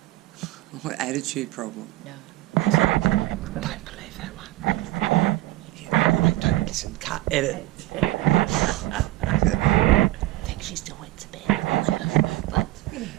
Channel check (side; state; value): left; quieter; 16.9 dB